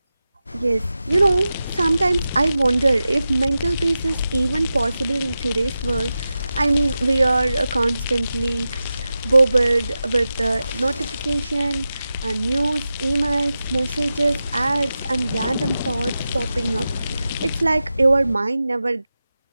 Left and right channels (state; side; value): inverted; both; correlation -0.93